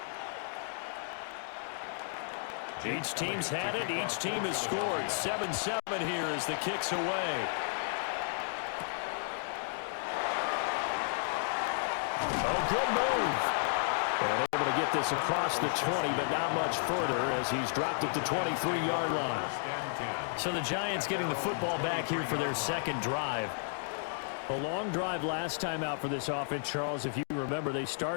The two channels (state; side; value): silent; right; digital silence